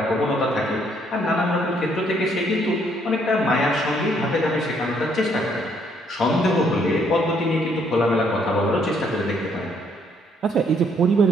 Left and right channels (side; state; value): both; normal; correlation 0.68